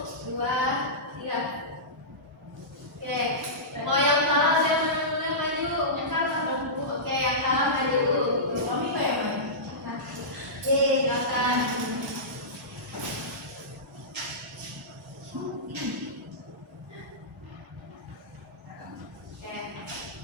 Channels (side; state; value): both; normal; correlation -0.18